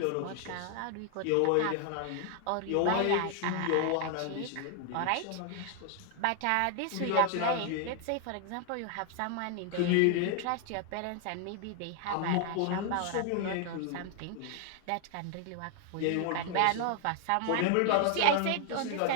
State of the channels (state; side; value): different; both; correlation 0.00